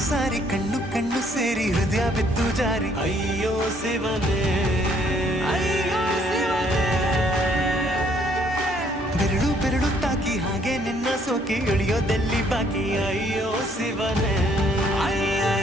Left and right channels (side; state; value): both; normal; correlation 0.65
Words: ಸಾರಿ ಕಣ್ಣು ಕಣ್ಣು ಸೇರಿ ಹೃದಯ ಬಿದ್ದು ಜಾರಿ ಅಯ್ಯೋ ಶಿವನೇ, ಅಯ್ಯೋ ಶಿವನೇ. ಬೆರಳು ಬೆರಳು ತಾಕಿ ಹಾಗೆ ನಿನ್ನ ಸೋಕಿ ಇಳಿಯೋದೆಲ್ಲಿ ಬಾಕಿ ಅಯ್ಯೋ ಶಿವನೇ,